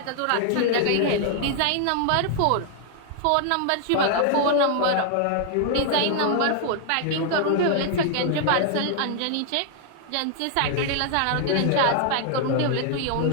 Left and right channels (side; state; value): both; different; correlation 0.00